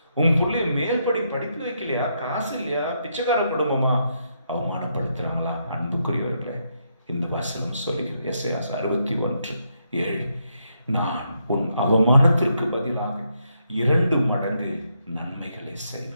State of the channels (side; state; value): both; inverted; correlation -0.78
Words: உன் பிள்ளைய மேல்படி படிப்பு வைக்கலையா, காசு இல்லையா, பிச்சைக்கார குடும்பமா, அவமானப்படுத்துறாங்களா? அன்புக்குரியவர்களே, இந்த வசனம் சொல்கிறது, எஸ்ஐயா 61:7, நான் உன் அவமானத்திற்கு பதிலாக 2 மடங்கு நன்மைகளை